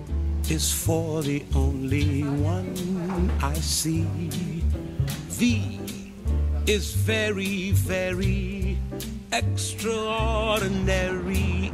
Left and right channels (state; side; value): identical; both; correlation 1.00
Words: is for the only one I see. V is very, very extraordinary.